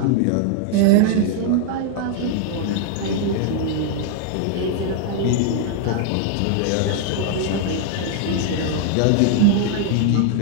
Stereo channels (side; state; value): both; different; correlation 0.00